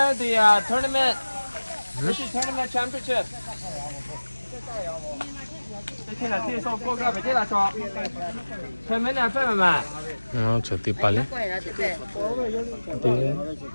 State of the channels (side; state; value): both; inverted; correlation -1.00